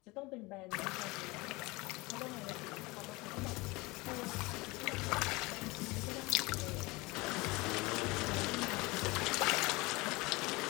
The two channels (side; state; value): right; quieter; 23.5 dB